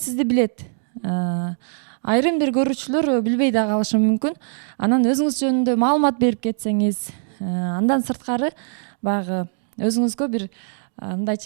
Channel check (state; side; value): silent; left; digital silence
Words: билет. Айрым бир көрүүчүлөр билбей да калышы мүмкүн. Анан өзүңүз жөнүндө маалымат берип кетсеңиз, андан сырткары баягы өзүңүзгө бир